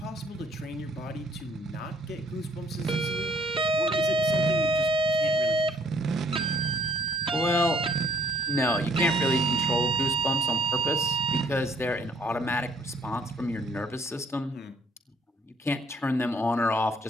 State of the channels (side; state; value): both; normal; correlation 0.61